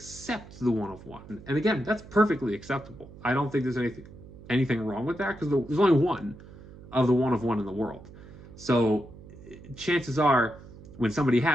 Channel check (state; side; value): noise; right; hum, 18 dB below the sound